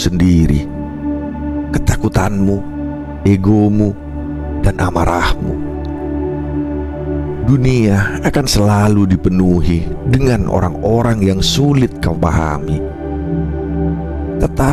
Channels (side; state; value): both; identical; correlation 1.00